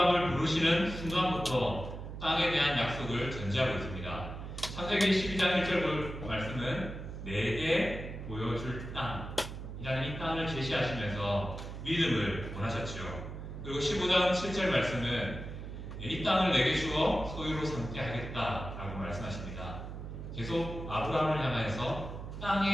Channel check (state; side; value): noise; right; hum, 9 dB below the sound